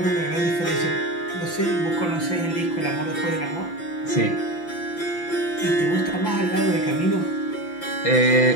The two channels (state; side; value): late; right; 5.8 ms